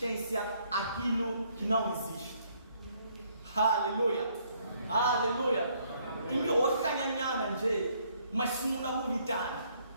aquilo que não existe. Aleluia. Aleluia. E hoje canhanhana nje, mas sumuna bonitana.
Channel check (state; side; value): inverted; both; correlation -0.67